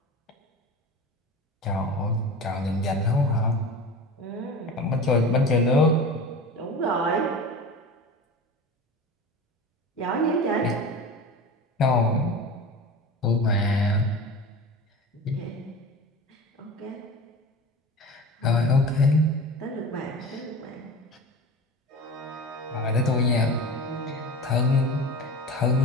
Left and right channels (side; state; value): both; normal; correlation 0.33